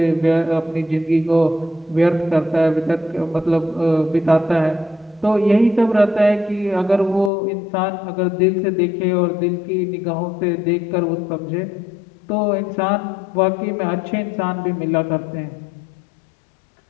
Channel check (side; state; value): right; drops out; at 7.3 s